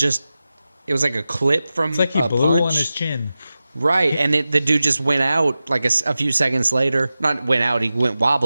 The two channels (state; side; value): inverted; both; correlation -0.94